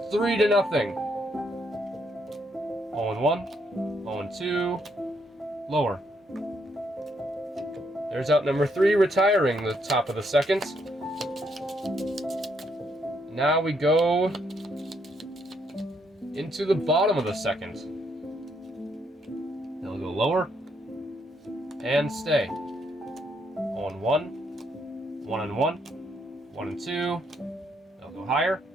3-0. 0-1, 0-2, lower. There's out number 3 retiring the top of the second. Now we go into the bottom of the second. They'll go lower and stay. 0-1, 1-1, 1-2. They'll go higher,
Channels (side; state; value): both; normal; correlation 0.74